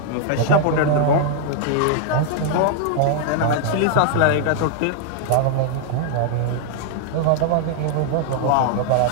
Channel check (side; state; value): both; different; correlation 0.00